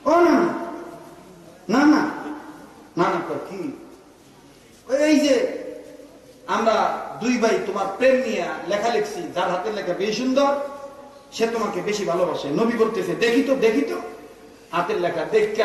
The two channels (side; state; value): both; identical; correlation 1.00